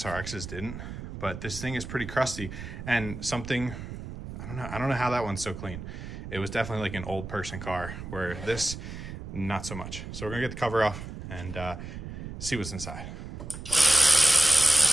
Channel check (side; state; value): right; noise; rumble, 10 dB below the sound